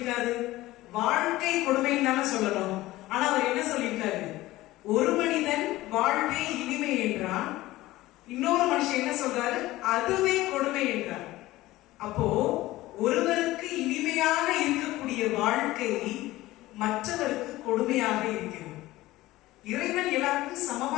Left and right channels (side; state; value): right; quieter; 17.5 dB